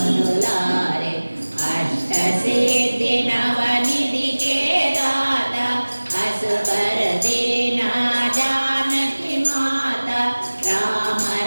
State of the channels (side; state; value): both; inverted; correlation -1.00